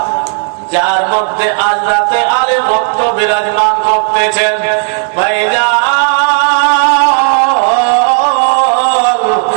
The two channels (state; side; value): silent; left; 68 dB below the other